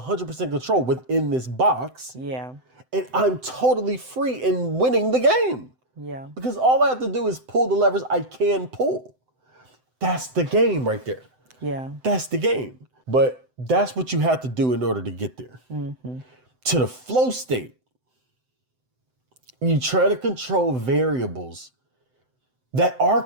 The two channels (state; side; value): late; left; 7.8 ms